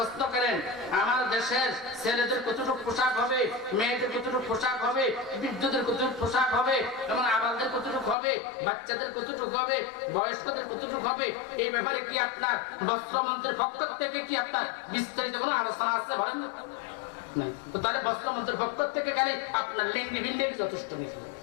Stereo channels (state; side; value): drops out; right; at 8.2 s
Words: করেন আমার দেশের ছেলেদের কতটুকু পোশাক হবে, মেয়েদের কতটুকু পোশাক হবে, বৃদ্ধদের কতটুকু পোশাক হবে, এবং আবালদের কতটুকু হবে, বাচ্চাদের কতটুকু হবে, বয়স্কদের কতটুকু হবে, এই ব্যাপারে কি আপনার বস্ত্রমন্ত্রীর পক্ষ থেকে কি আপনার বিস্তারিত কোনো আলোচনা আছে বলেন না? তো তাহলে বস্ত্রমন্ত্রীর পক্ষ থেকে গেলে আপনার লেন্ডি বিন্ডি যথেষ্ট নেই।